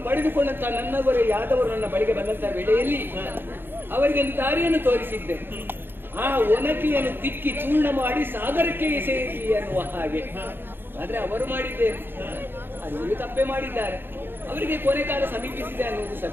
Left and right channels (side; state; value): left; late; 0.10 ms